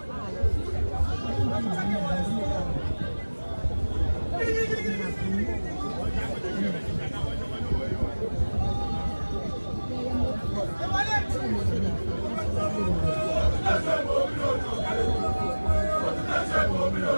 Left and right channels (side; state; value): both; inverted; correlation -1.00